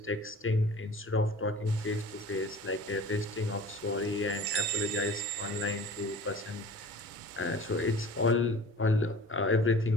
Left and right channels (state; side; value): normal; both; correlation 0.43